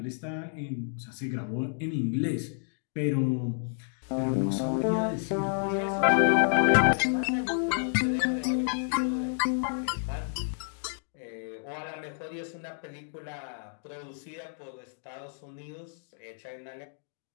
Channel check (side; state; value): right; silent; digital silence